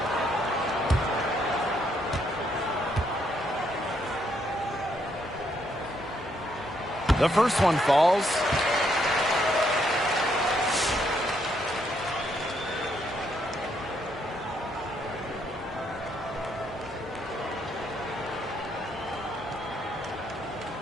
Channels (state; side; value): normal; both; correlation 0.74